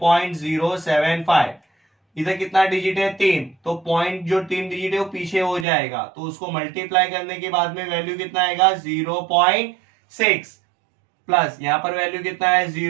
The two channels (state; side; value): drops out; left; at 5.7 s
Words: इधर कितना डिजिट है 3, तो पॉइंट जो 3 डिजिट है वो पीछे हो जाएगा, तो उसको मल्टीप्लाई करने के बाद में वैल्यू कितना आएगा 0.6 प्लस यहां पर वैल्यू कितना है